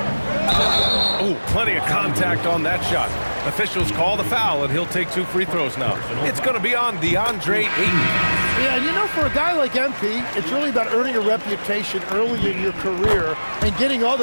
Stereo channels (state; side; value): inverted; both; correlation -1.00